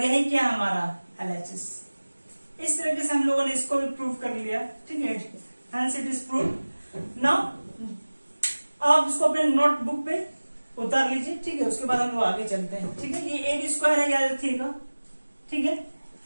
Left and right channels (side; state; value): both; inverted; correlation -1.00